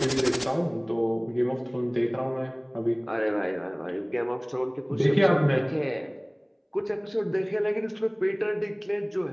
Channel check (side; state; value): both; identical; correlation 1.00